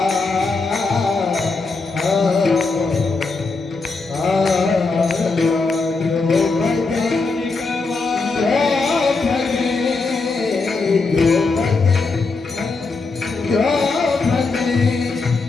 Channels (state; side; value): quieter; right; 4.0 dB